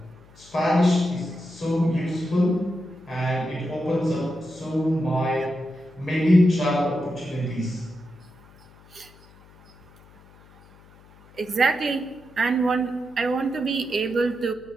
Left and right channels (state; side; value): noise; left; hum, 25 dB below the sound